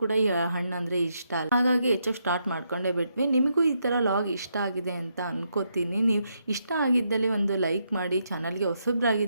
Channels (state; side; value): inverted; both; correlation -0.79